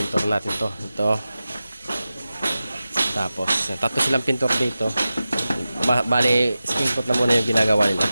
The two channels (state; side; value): inverted; both; correlation -0.94